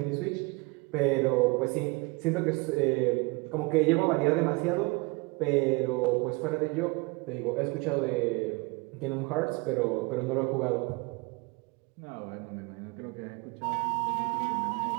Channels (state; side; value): quieter; left; 26.7 dB